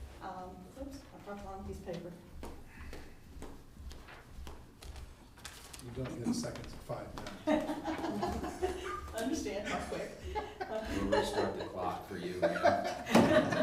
Oops, I dropped the wrong piece of paper. You don't get seconds of 5 minutes. Understand how quick. We'll restart the clock for you, man.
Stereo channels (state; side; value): identical; both; correlation 1.00